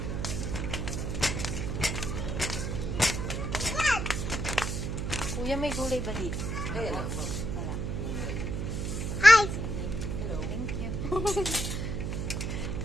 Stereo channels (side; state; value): right; noise; hum, 2 dB below the sound